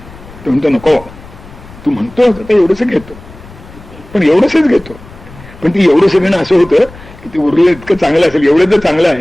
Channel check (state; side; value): noise; left; rumble, 20 dB below the sound